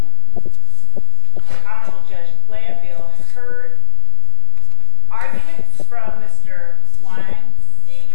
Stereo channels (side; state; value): both; different; correlation 0.00